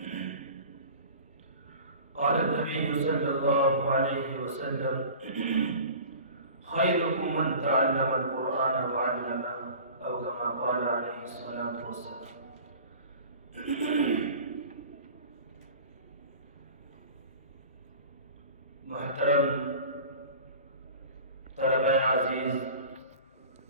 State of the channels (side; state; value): both; inverted; correlation -0.41